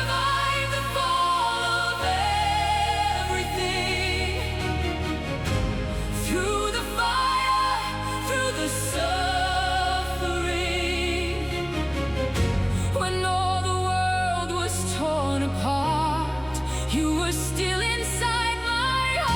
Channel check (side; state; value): both; identical; correlation 1.00